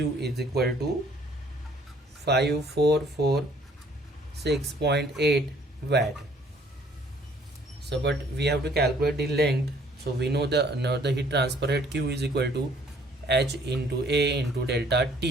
equal to 5446.8 watt. So but we have to calculate the length. So we know the heat transfer rate Q is equal to H into A into delta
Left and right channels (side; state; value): both; normal; correlation 0.60